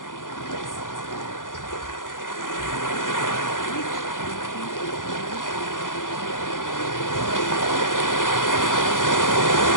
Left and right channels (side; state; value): right; late; 0.88 ms